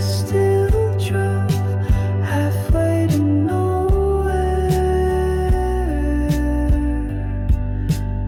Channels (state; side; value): identical; both; correlation 1.00